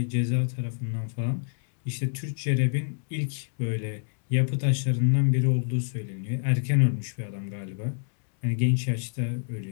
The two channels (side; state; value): right; silent; 60 dB below the other